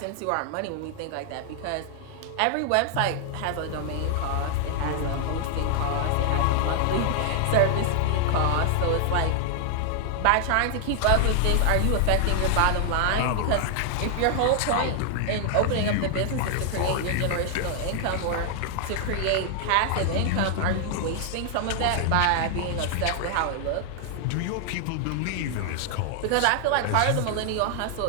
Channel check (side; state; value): both; different; correlation 0.00